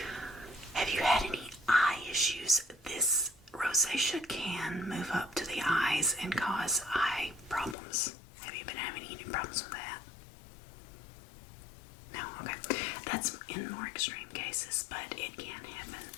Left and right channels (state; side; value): drops out; right; at 7.8 s